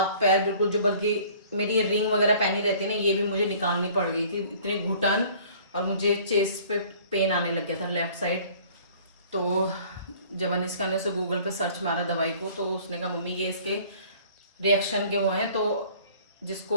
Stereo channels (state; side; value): inverted; both; correlation -0.52